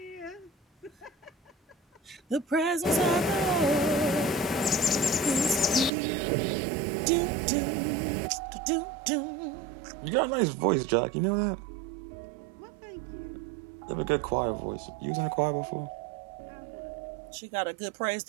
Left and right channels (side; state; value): left; drops out; at 5.9 s